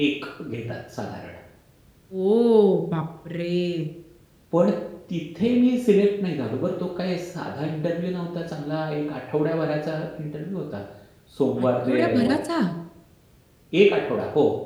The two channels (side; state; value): both; identical; correlation 1.00